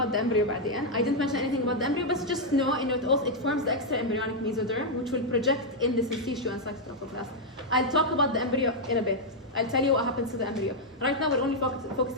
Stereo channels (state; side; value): normal; both; correlation -0.02